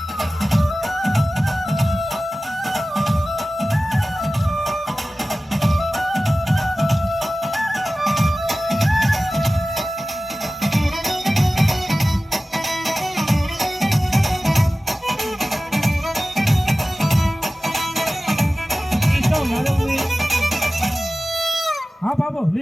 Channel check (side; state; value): both; normal; correlation 0.96